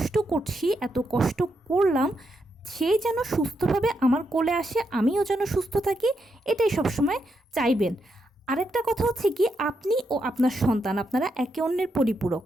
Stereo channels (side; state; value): both; normal; correlation 0.81